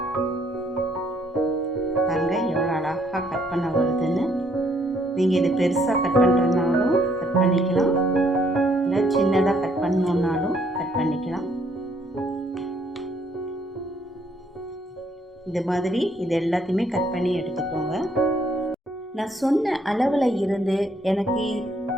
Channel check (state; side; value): normal; both; correlation 0.68